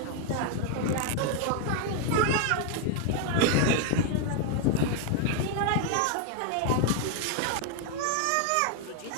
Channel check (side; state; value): both; different; correlation 0.00